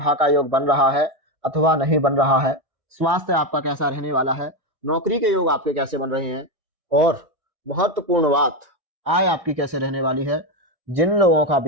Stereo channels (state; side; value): late; left; 1.6 ms